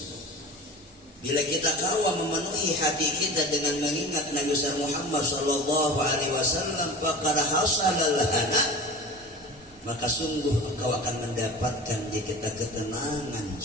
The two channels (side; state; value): both; normal; correlation 0.35